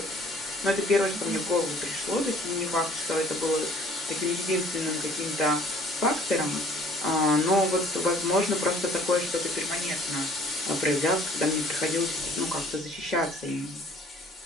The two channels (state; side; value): normal; both; correlation 0.54